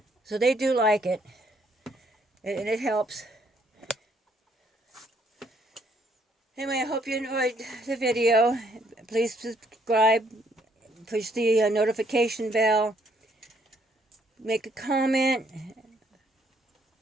So they do like it. And it helps. Anyway, I hope you enjoyed the video. Please subscribe, push the notification bell, make a comment,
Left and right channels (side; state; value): both; normal; correlation 0.68